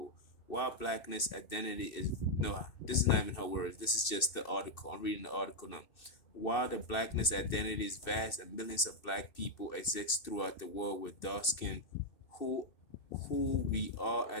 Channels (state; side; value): late; right; 2.7 ms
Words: While blackness identity is no, this is not even her words. This is just the article. I'm reading the article now. While the blackness identity is vast and millions of black people exist throughout the world with dark skin, who who we are